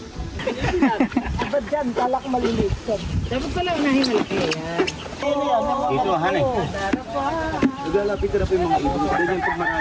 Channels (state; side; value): identical; both; correlation 1.00